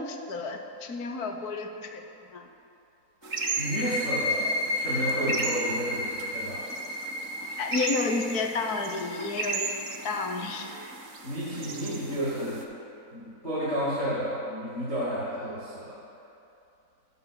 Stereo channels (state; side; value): late; right; 3.9 ms